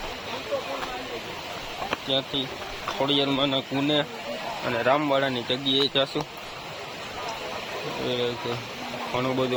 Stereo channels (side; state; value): both; identical; correlation 1.00